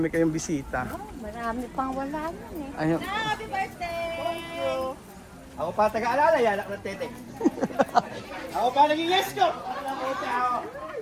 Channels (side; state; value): both; identical; correlation 1.00